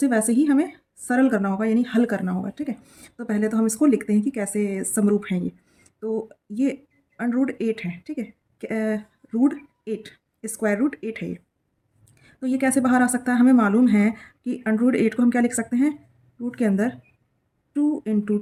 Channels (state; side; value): identical; both; correlation 1.00